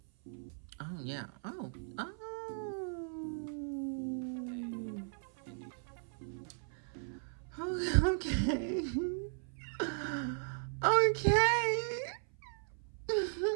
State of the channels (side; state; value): left; silent; 53 dB below the other